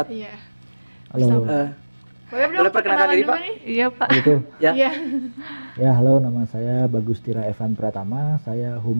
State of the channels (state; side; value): inverted; both; correlation -1.00